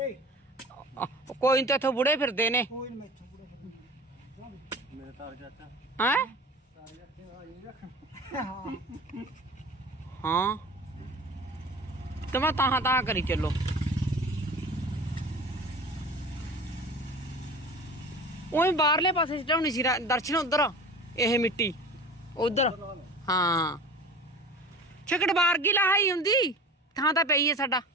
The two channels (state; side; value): normal; both; correlation 0.37